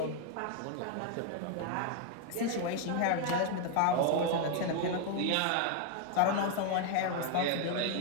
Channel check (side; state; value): both; different; correlation 0.01